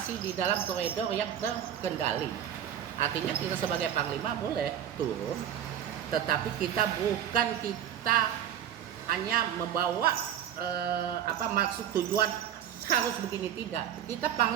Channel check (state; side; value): quieter; left; 10.0 dB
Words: di dalam koridor yang terkendali. Artinya kita sebagai Panglima boleh turun, tetapi kita hanya membawa maksud tujuan harus begini, tidak. Kita